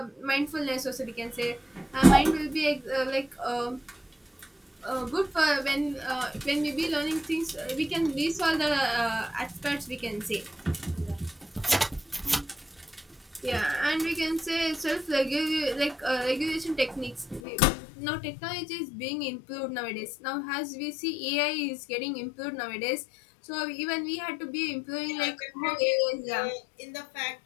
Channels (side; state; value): right; drops out; at 17.4 s